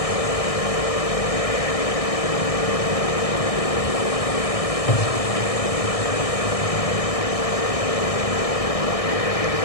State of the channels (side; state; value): right; late; 1.6 ms